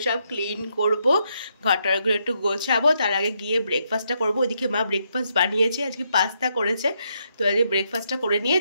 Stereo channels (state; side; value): inverted; both; correlation -0.78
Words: সব ক্লিন করব, ঘরটারগুলো একটু গোছাবো, তার আগে গিয়ে ব্রেকফাস্টটা করবো। ওইদিকে মা ব্রেকফাস্ট বানিয়েছে, আজকে পাস্তা করেছে। তো আজকে ব্রেকফাস্টটা করে নিয়ে